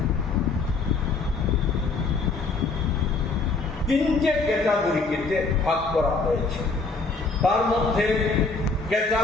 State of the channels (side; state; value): right; quieter; 4.0 dB